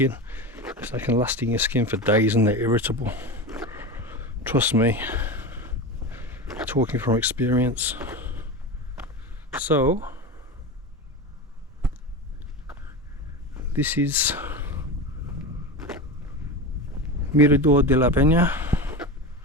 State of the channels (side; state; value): both; normal; correlation 0.23